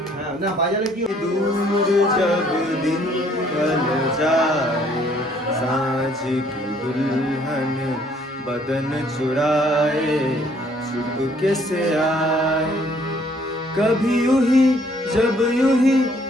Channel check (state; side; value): normal; both; correlation 0.63